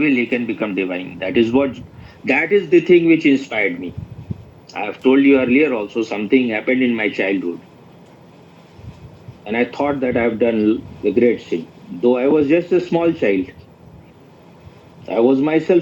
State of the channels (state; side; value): identical; both; correlation 1.00